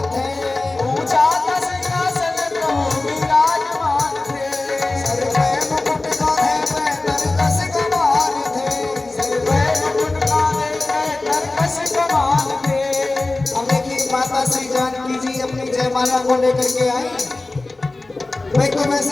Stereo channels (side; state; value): right; quieter; 3.1 dB